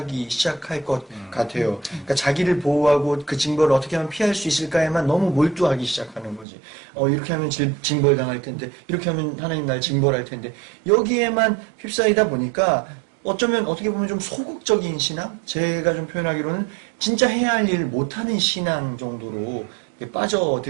시작할 것 같아요. 그러니까 자기를 보호하고 그 징벌을 어떻게 하면 피할 수 있을까에만 너무 몰두하기 시작하는 거지. 이렇게 하면 징벌 당할 텐데, 이렇게 하면 하나님 날 징벌할 텐데, 여기에만 휩싸이다 보니까 어쩌면 어떻게 보면 좀 소극적인 신앙? 제가 좀 표현하기로는 진짜 해야 할 일을 못하는 신앙 정도로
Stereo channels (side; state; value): left; drops out; at 6.5 s